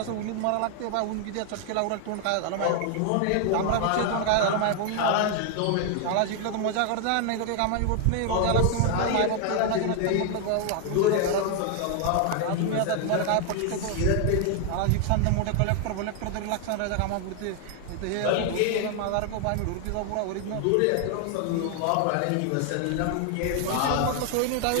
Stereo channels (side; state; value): both; different; correlation 0.00